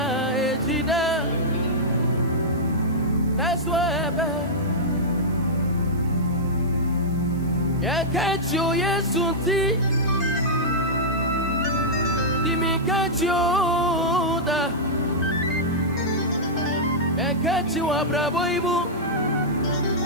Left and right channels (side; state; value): right; noise; hiss, 25 dB below the sound